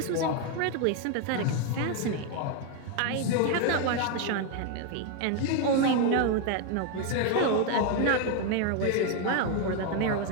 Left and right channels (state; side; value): different; both; correlation 0.01